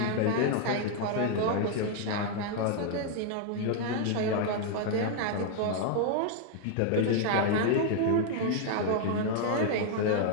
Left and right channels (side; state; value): both; different; correlation 0.00